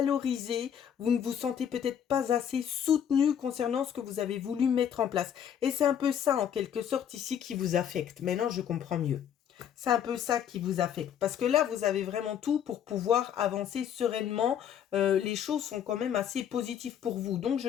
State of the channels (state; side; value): quieter; right; 9.1 dB